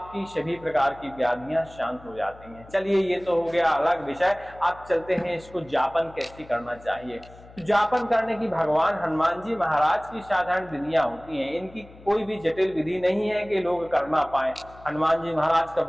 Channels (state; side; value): noise; left; hum, 21 dB below the sound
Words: सभी प्रकार की व्याधियां शांत हो जाती हैं। चलिए ये तो हो गया अलग विषय, आप चलते हैं इसको जापन कैसे करना चाहिए। जापन करने की भगवान हनुमान जी महाराज की साधारण विधियां होती हैं, इनकी कोई भी जटिल विधि नहीं है कि लोग कर ना पाए। हनुमान जी महाराज का